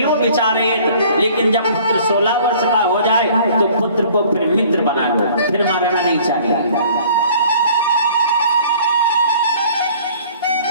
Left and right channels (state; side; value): inverted; both; correlation -0.53